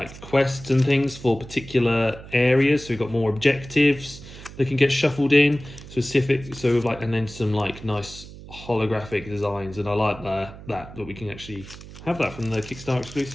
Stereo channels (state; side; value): noise; right; hum, 16 dB below the sound